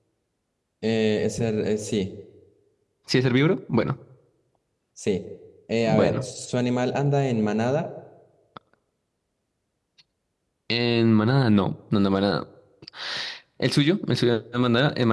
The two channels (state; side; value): identical; both; correlation 1.00